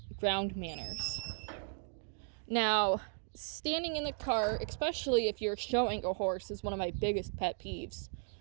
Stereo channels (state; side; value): silent; left; 54 dB below the other